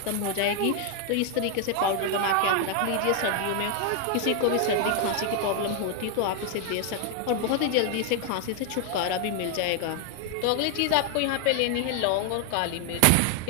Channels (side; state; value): both; different; correlation 0.00